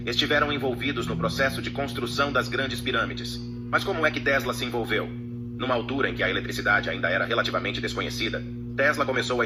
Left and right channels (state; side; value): identical; both; correlation 1.00